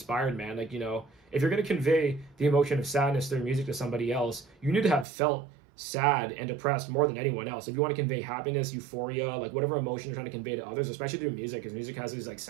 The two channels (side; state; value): left; drops out; at 5.1 s